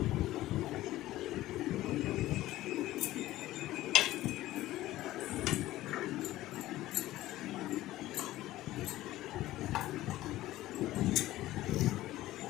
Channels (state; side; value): quieter; right; 15.8 dB